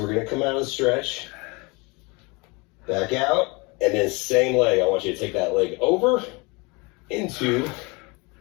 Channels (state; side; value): quieter; right; 27.9 dB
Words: going to come out of the stretch. Back out. And then same leg. I want you to take that leg over into